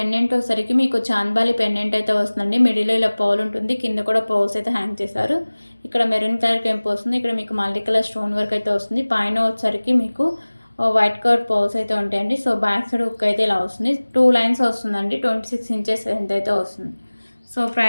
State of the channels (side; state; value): both; inverted; correlation -1.00